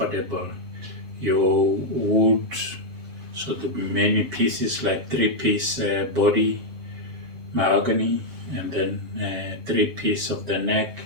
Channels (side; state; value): left; late; 7.3 ms